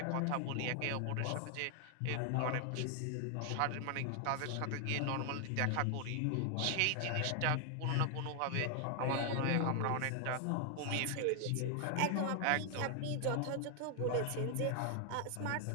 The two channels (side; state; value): both; different; correlation 0.00